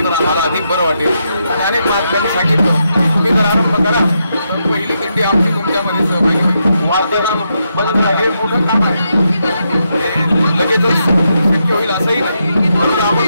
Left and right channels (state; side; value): inverted; both; correlation -0.82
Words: तर आम्हाला अधिक बरं वाटेल। आणि अनेक महात्म्यांनी सांगितलं तुम्ही जर आरंभ करा तर पहिली दिंडी आमची तुमच्यामध्ये सहभागी होईल। वार्ताहर हे मोठं काम आहे, लगेचच शक्य होईल असंही नाही, फक्त आपण